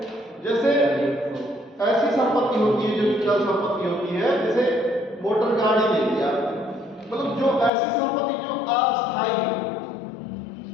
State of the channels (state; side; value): drops out; right; at 7.7 s